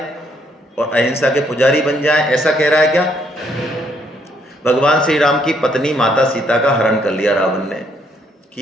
और अहिंसा के पुजारी बन जाएं, ऐसा कह रहा है क्या। भगवान श्री राम की पत्नी माता सीता का हरण कर लिया रावण ने,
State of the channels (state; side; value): normal; both; correlation 0.70